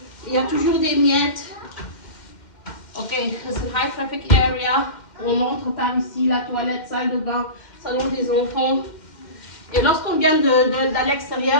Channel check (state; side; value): late; right; 2.1 ms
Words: Il y a toujours des miettes. Ok, c'est high traffic area. On entre par ici, la toilette, salle de bain, salon des enfants. Et lorsqu'on vient de